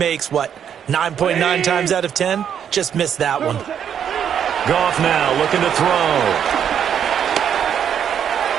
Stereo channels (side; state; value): left; quieter; 8.6 dB